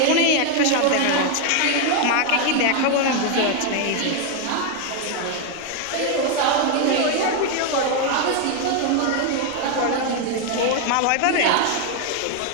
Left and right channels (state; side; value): different; both; correlation 0.01